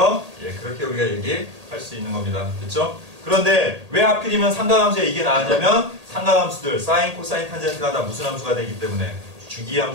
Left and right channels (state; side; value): late; left; 1.8 ms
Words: 예, 그렇게 우리가 얘기할 수 있는 겁니다. 됐죠? 그런데 왜 하필이면 삼각함수에 이게 나왔냐면, 삼각함수들 사인, 코사인, 탄젠트가 다 무슨 함수가 되기 때문에,